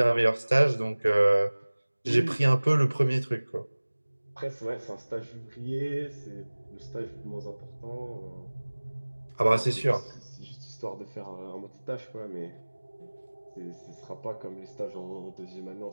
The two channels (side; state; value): both; inverted; correlation -1.00